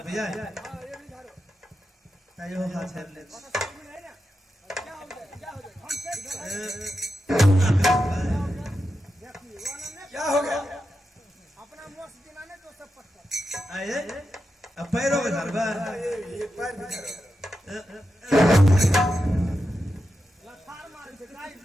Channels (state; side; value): normal; both; correlation 0.89